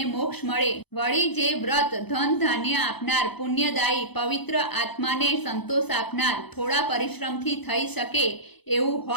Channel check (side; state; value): right; late; 0.98 ms